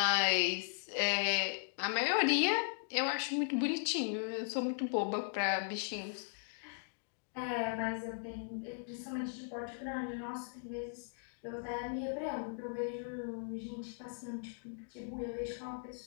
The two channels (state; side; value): silent; right; digital silence